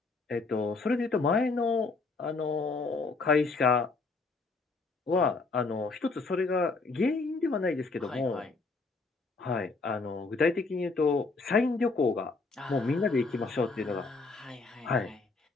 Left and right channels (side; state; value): right; quieter; 3.9 dB